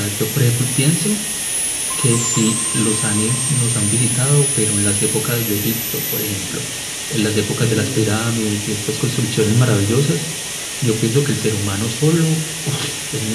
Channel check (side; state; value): both; identical; correlation 1.00